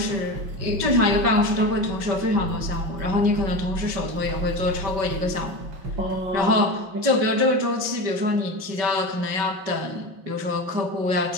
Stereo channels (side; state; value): left; late; 5.2 ms